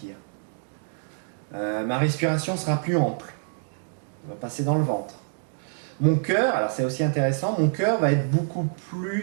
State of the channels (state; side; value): silent; left; digital silence